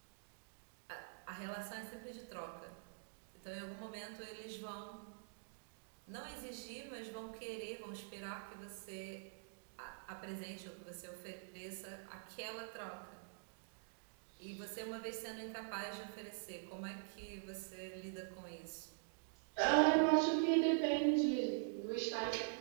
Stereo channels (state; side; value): silent; left; digital silence